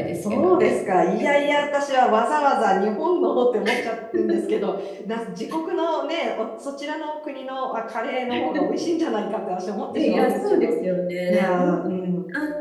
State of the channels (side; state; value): both; identical; correlation 1.00